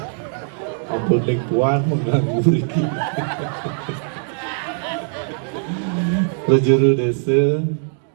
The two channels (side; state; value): left; silent; 59 dB below the other